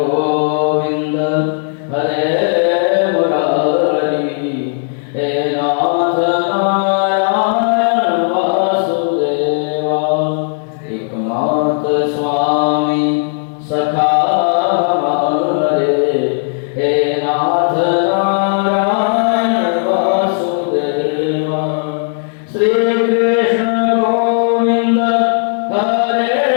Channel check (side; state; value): right; silent; digital silence